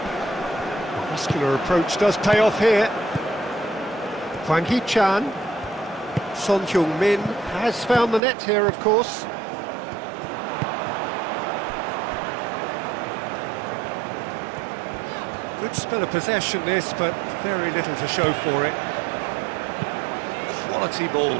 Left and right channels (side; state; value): left; drops out; at 8.2 s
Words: muscular approach does pay off here. Hwang Hee-chan. Son Heung-min has found the net here, of course. Good spell of possession this, but very little to show for it. Quality